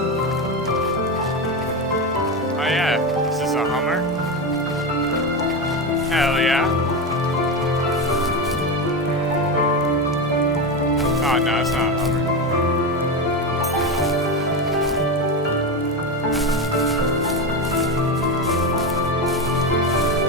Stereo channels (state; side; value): normal; both; correlation 0.17